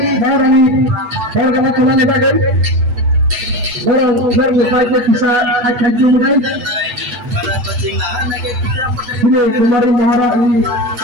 Maharani Warga Tulan Bagai Orang Merlukai bisa akan jumpai ini Kumari Maharani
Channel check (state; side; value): late; left; 8.1 ms